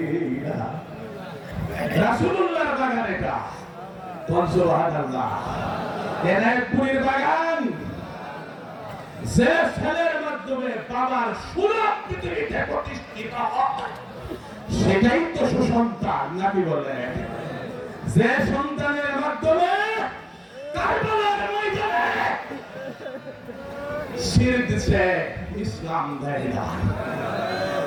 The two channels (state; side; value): identical; both; correlation 1.00